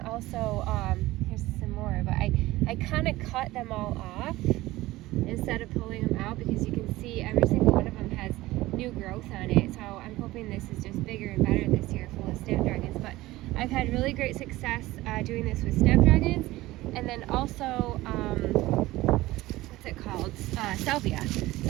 here's some more, but I kind of cut them all off instead of pulling them out, because you can see every single one of them has new growth on it. So I'm hoping this is just bigger and better this year, full of snapdragons. But I've had really great success doing this with snapdragons. And then also, what's it called? Salvia.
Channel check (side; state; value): left; quieter; 18.0 dB